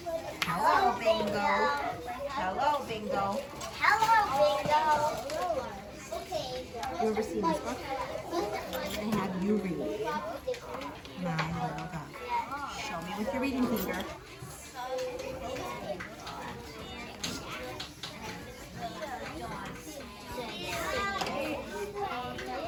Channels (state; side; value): identical; both; correlation 1.00